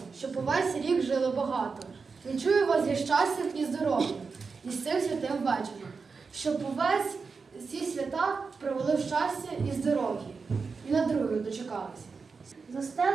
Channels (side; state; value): left; quieter; 4.9 dB